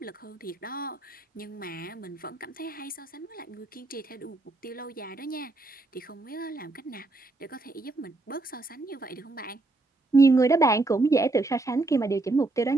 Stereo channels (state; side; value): quieter; left; 3.1 dB